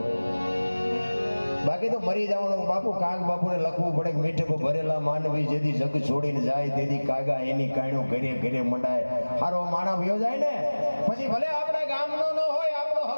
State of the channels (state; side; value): inverted; both; correlation -1.00